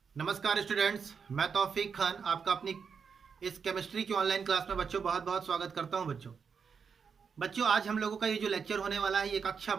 स्टूडेंट्स, मैं तौफीक खान आपका अपनी इस केमिस्ट्री की ऑनलाइन क्लास में बच्चों बहुत बहुत स्वागत करता हूं। बच्चों आज हम लोगों का ये जो लेक्चर होने वाला है ये कक्षा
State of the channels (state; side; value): quieter; left; 6.1 dB